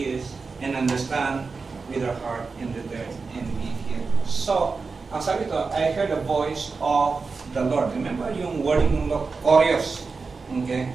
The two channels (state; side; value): quieter; left; 4.5 dB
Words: and understand with their heart, and return, and be healed. So, ang sabi ito, I heard the voice of the Lord. Remember yung wording ng Orios? Okay?